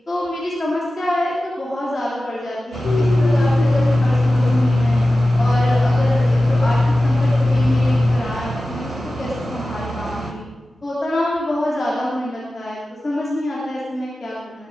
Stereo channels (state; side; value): normal; both; correlation 0.95